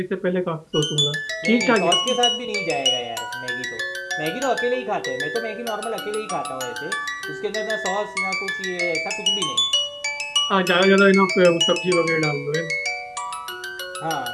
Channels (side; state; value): both; identical; correlation 1.00